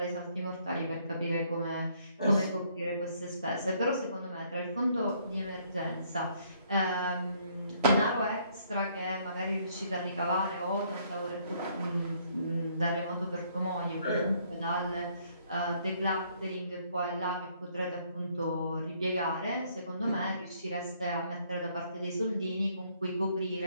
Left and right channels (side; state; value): both; inverted; correlation -0.66